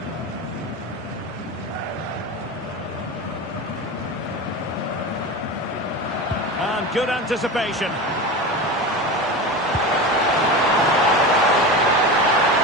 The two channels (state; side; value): normal; both; correlation 0.26